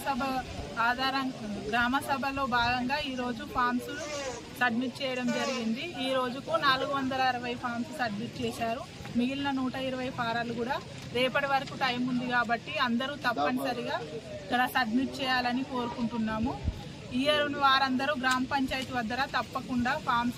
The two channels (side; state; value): both; identical; correlation 1.00